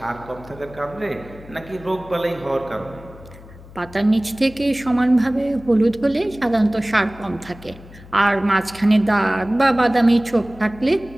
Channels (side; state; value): left; noise; hum, 19 dB below the sound